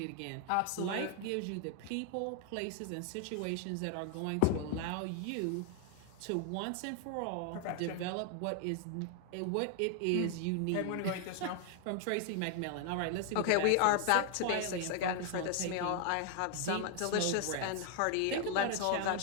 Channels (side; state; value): both; different; correlation 0.00